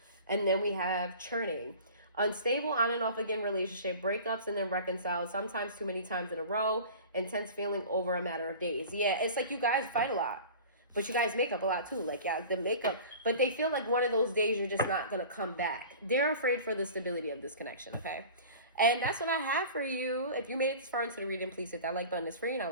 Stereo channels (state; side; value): inverted; both; correlation -0.40